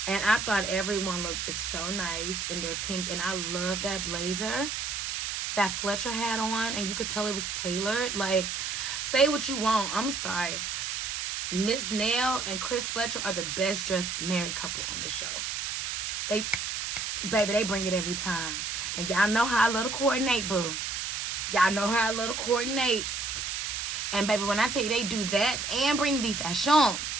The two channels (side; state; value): right; noise; hiss, 3 dB below the sound